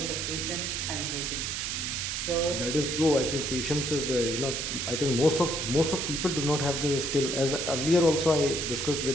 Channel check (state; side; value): noise; right; hiss, 2 dB below the sound